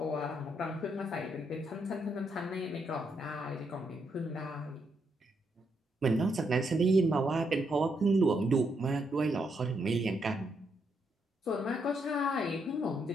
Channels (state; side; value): normal; both; correlation 0.78